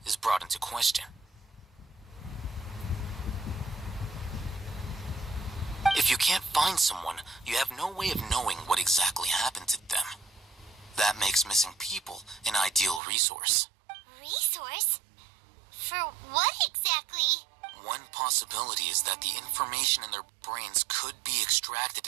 is brought into question. If you can't find someone, you have no way of knowing what exactly happened to them. That makes missing people an ideal resource. Resource? For what exactly? One possibility is that the information in their brains could be extracted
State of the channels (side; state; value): left; drops out; at 13.0 s